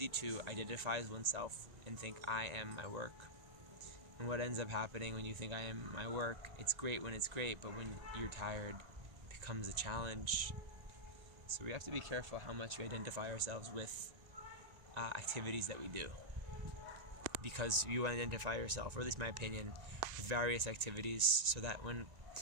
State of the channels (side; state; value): left; late; 1.9 ms